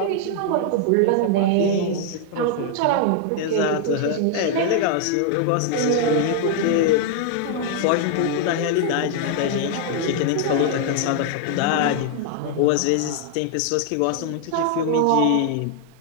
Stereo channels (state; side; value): different; both; correlation 0.00